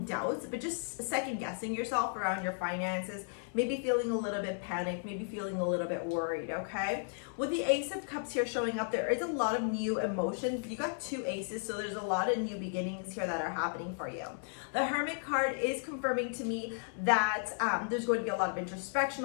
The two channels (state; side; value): silent; right; 55 dB below the other